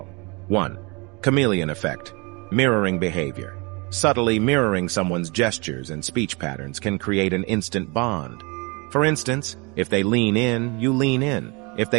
1. Chameleon effect. Mirroring behavior. Subtly mirroring someone's gestures and speech patterns can create an instant bond. For instance, if they lean in, you lean in. If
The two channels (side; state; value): left; quieter; 28.9 dB